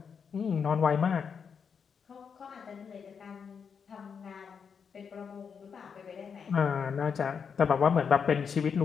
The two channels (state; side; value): quieter; right; 6.5 dB